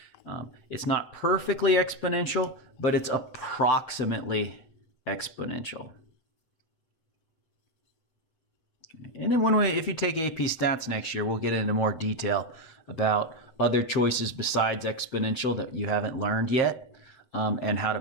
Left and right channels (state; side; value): late; right; 7.8 ms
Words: it's not perfectly exponential, but it's approximately exponential. And then if you take AP Stats next year, we'll get into more detail about other choices besides exponential that you haven't learned yet, and how to